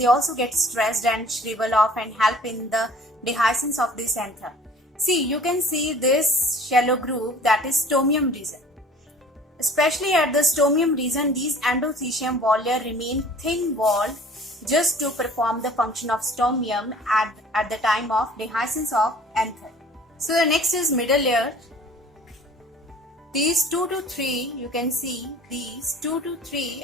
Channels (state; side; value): normal; both; correlation 0.49